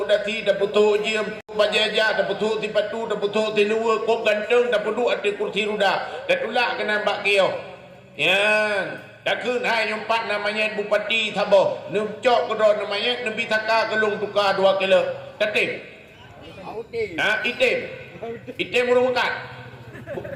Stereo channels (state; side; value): identical; both; correlation 1.00